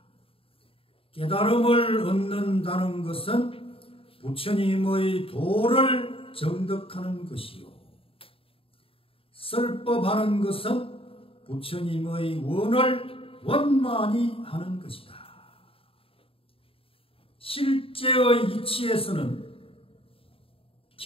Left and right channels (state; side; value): late; right; 0.27 ms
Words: 깨달음을 얻는다는 것은 부처님의 도를 정득하는 것이요, 설법하는 것은 부처님의 원을 원만히 하는 것이다. 실제의 이치에서는